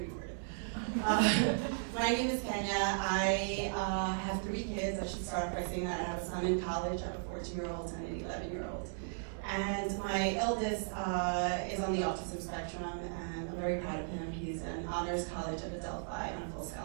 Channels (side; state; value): left; silent; digital silence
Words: recorded. My name is Kenya. I have 3 kids. I should start by saying that I have a son in college, I have a 14-year-old and an 11-year-old. And my eldest is on the autism spectrum, and I'm very proud of him. He's an honors college at Adelphi on full